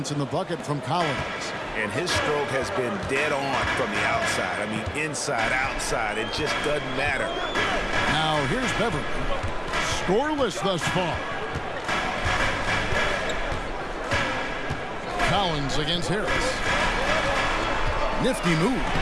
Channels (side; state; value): both; identical; correlation 1.00